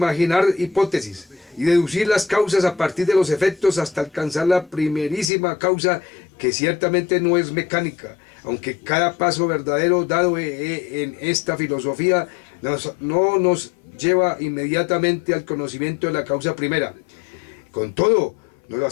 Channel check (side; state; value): right; drops out; at 5.3 s